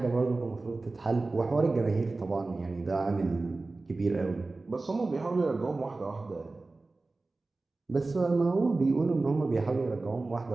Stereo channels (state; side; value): quieter; left; 3.4 dB